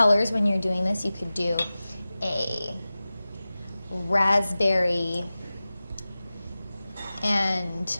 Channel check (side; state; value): both; inverted; correlation -0.96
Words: when you're doing this. You could do a raspberry and